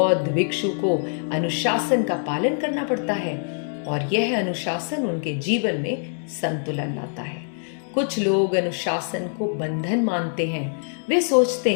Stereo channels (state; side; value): silent; right; 63 dB below the other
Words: भिक्षु को अनुशासन का पालन करना पड़ता है और यह अनुशासन उनके जीवन में संतुलन लाता है। कुछ लोग अनुशासन को बंधन मानते हैं। वे सोचते